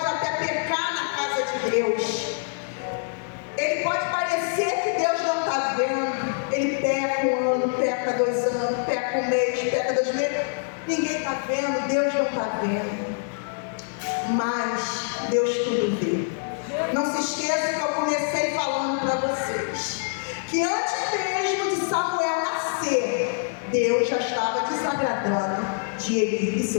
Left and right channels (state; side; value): silent; right; digital silence